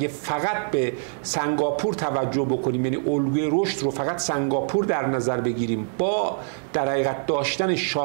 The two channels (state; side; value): silent; left; digital silence